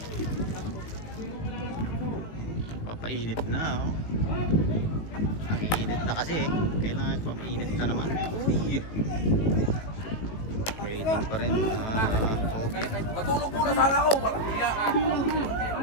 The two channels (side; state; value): right; late; 19 ms